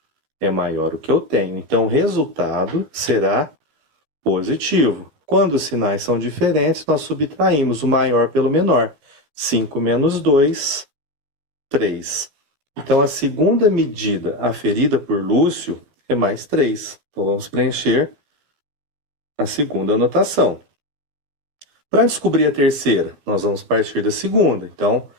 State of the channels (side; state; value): left; late; 14 ms